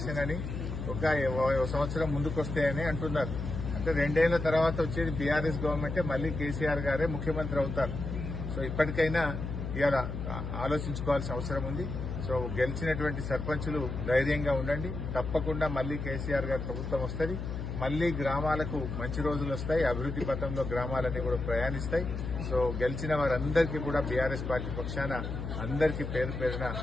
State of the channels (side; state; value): left; noise; hum, 5 dB below the sound